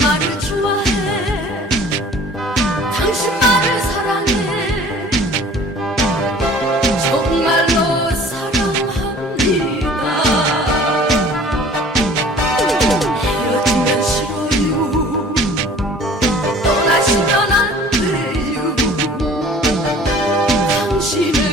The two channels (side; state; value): both; normal; correlation 0.49